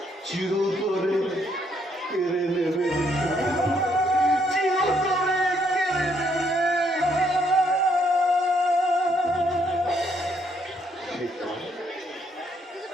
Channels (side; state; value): both; normal; correlation 0.71